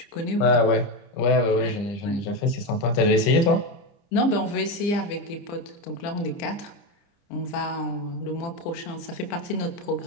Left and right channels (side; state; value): right; late; 30 ms